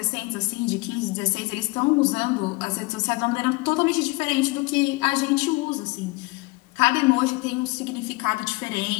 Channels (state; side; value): quieter; right; 25.3 dB